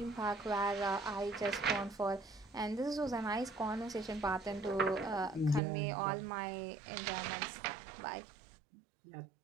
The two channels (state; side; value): drops out; left; at 5.6 s